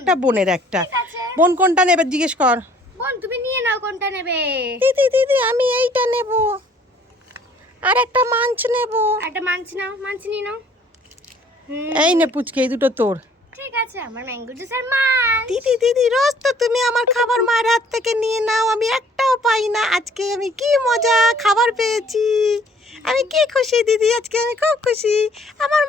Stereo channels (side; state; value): both; normal; correlation 0.58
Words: বোনের একটা। বোন কোনটা নেবে জিজ্ঞেস কর। বোন তুমি নিয়ে নাও, কোনটা নেবে? দিদি দিদি আমি এইটা নেব, আর একটা মাঞ্চ নেব। একটা মাঞ্চ নাও, মাঞ্চ নিয়ে নাও। এই নে পুচকি, এই দুটো তোর। ঠিক আছে, আমার ম্যাঙ্গো জুস আর মাঞ্চ। দিদি দিদি রোজ তো তুমি আমার খাবার মায়ের হাত থেকে নিয়ে নাও, আমি একটাও পাই না। আজকে আমি কি মজা খাবার পেয়েছি, আমি কি খুশি দিদি, আজকে আমি খুব খুশি। আমার